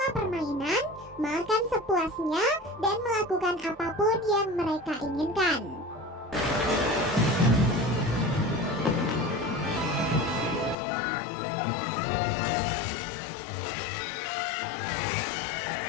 permainan, makan sepuasnya, dan melakukan apapun yang mereka inginkan.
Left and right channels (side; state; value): right; drops out; at 10.8 s